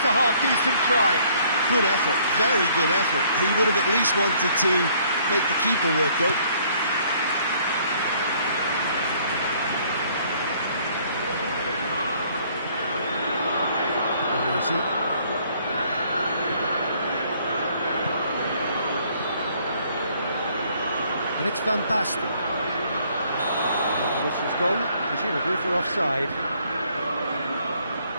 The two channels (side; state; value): both; inverted; correlation -0.62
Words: a half-decent try. Good effort, very good effort. He would have at least wanted to make the keeper work though. Baresi. And it's Van Basten. And the whistle's gone, presumably for offside.